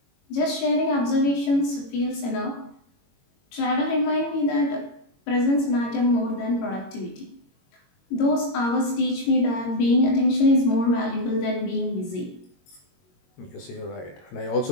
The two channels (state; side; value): late; right; 22 ms